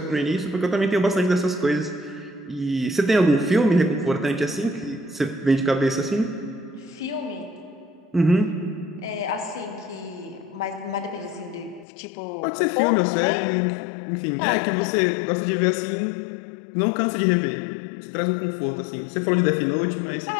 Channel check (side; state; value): right; drops out; at 11.9 s